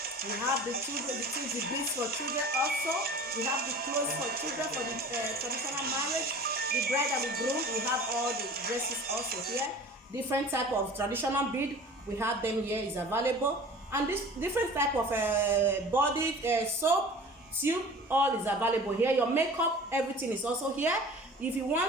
We have the beads for children also. We have the clothes for children for the traditional marriage. The bride and the groom, we have all the dresses also here. Different type of traditional bead, we have them here is available. And this different type of body soap, tube, all is available here. Your makeup, everything is also here. If you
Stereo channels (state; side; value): normal; both; correlation 0.42